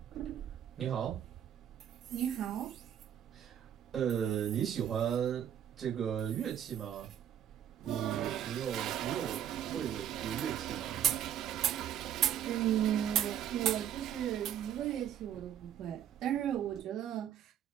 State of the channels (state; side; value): quieter; left; 9.8 dB